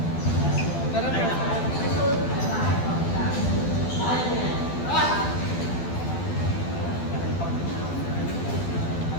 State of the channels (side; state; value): right; late; 12 ms